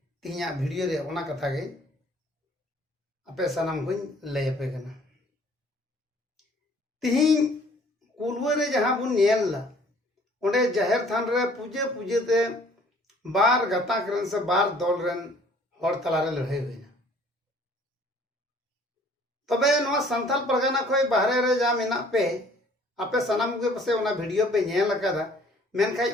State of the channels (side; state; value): both; normal; correlation 0.56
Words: तिहिया वीडियो रे ओना कथा गे आपे सनम को लय पे कना तिहिन कुलवा रे जहां बुन नेल ला ओंडे जाहिर थान रे पूजे पूजे ते बार गता करन से बार दल रेन हर तला रे लड़ाई होइना तबे नवा संथाल परगना खोय बाहरे रे जा मेना पे आपे सनम के पसे ओना वीडियो पे नेल लकादा मेनखाय